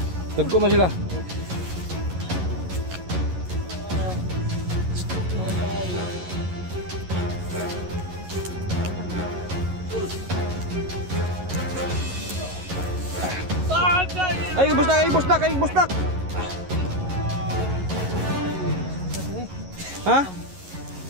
Dagko man sila. Ay, busdak, ay, busdak, ay, busdak. Ha?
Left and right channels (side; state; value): left; late; 11 ms